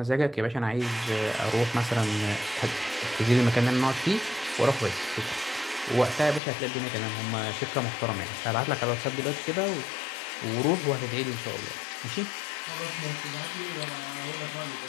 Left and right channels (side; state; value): right; drops out; at 6.4 s